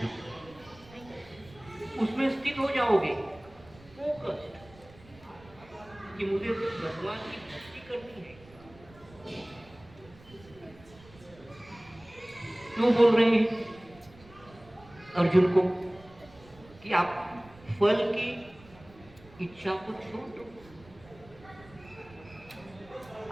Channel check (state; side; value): noise; right; rumble, 23 dB below the sound